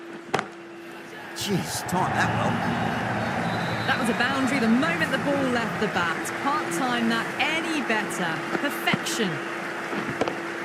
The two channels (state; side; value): identical; both; correlation 1.00